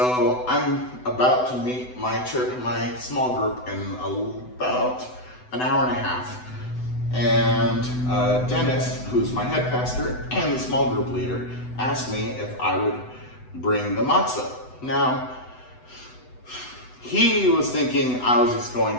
I'm about to meet my small group in about an hour and a half. And Dennis, who's my head pastor and the small group leader, asked me if I would bring the matzah. Now, he was thinking I was just going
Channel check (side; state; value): right; late; 8.0 ms